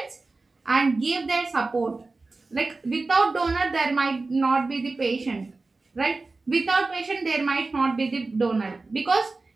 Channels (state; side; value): quieter; left; 3.6 dB